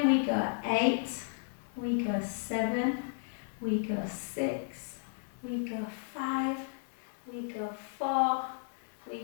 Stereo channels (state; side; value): silent; right; 55 dB below the other